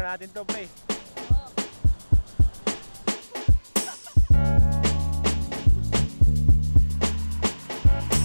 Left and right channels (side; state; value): both; inverted; correlation -1.00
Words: natin to pre.